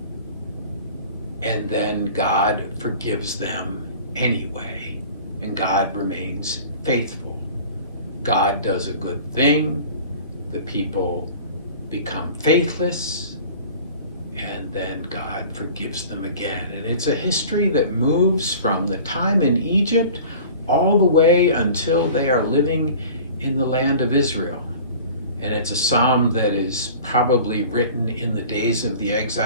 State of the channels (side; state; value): both; inverted; correlation -0.43